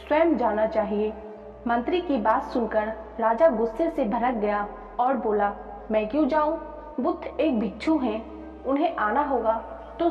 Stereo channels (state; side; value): identical; both; correlation 1.00